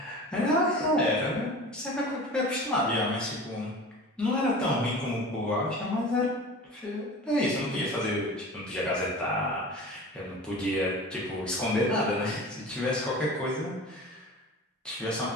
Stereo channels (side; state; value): both; normal; correlation 0.37